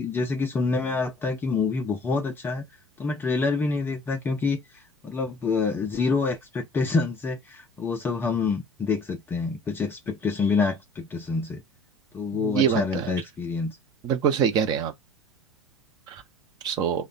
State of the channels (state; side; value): normal; both; correlation 0.50